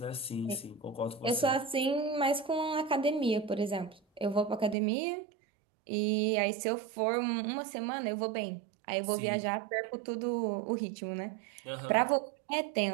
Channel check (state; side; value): drops out; left; at 4.8 s